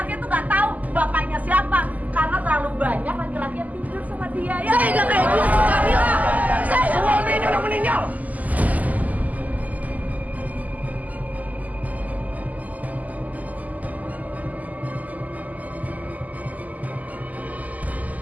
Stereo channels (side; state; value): left; late; 0.078 ms